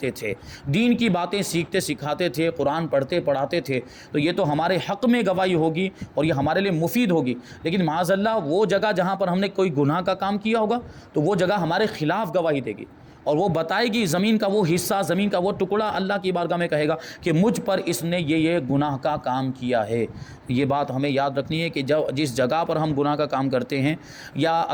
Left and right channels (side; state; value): both; identical; correlation 1.00